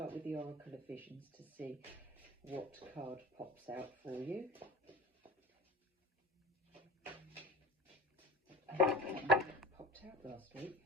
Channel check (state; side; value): normal; both; correlation 0.37